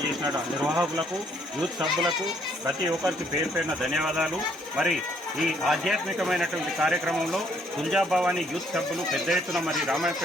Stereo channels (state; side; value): normal; both; correlation 0.67